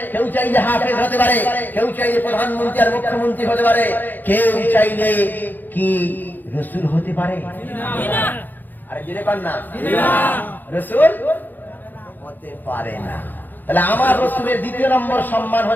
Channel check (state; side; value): late; right; 0.087 ms